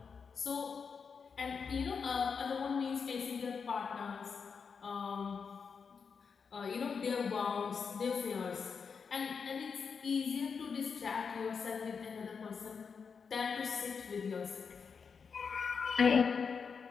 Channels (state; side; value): quieter; right; 5.8 dB